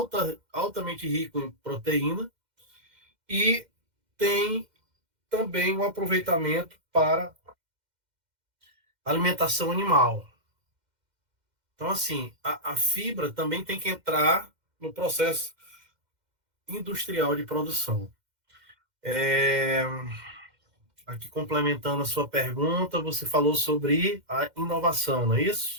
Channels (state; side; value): late; left; 2.1 ms